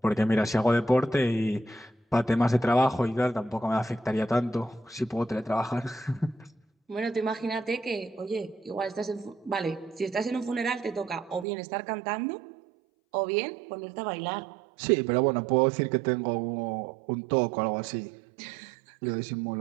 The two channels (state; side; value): drops out; left; at 11.5 s